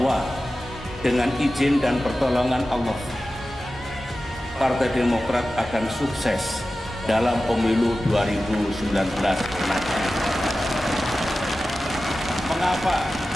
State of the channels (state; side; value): normal; both; correlation 0.94